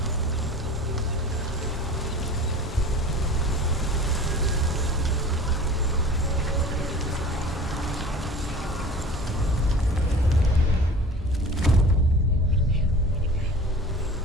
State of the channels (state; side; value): normal; both; correlation 0.41